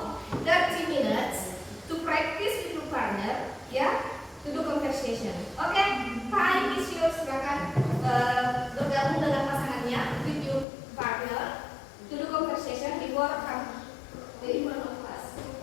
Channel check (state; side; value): drops out; right; at 10.7 s